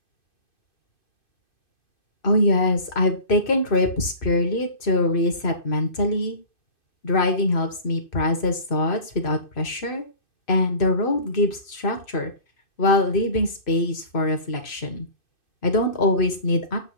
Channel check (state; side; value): late; right; 2.6 ms